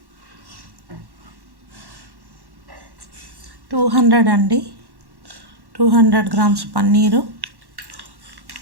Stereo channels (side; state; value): left; late; 1.1 ms